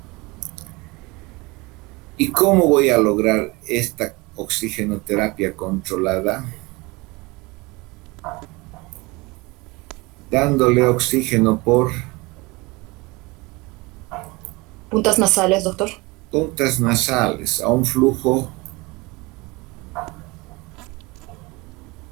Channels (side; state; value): left; quieter; 24.4 dB